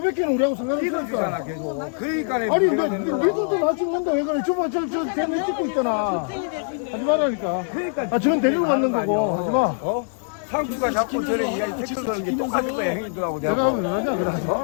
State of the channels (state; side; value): silent; right; digital silence